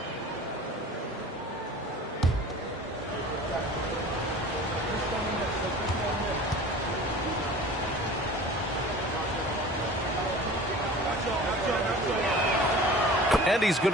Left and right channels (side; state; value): both; normal; correlation 0.41